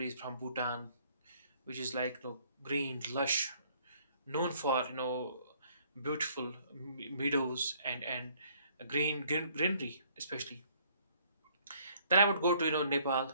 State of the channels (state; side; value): inverted; both; correlation -0.62